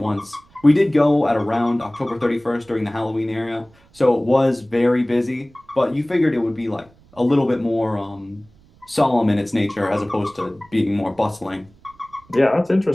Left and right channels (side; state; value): right; noise; rumble, 29 dB below the sound